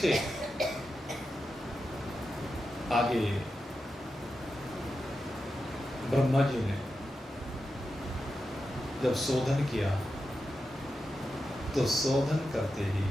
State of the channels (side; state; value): both; normal; correlation 0.90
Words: आगे ब्रह्मा जी ने जब शोधन किया तो शोधन करते ही